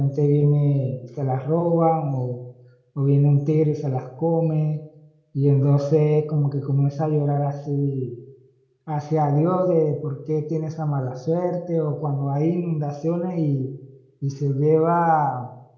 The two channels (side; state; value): both; identical; correlation 1.00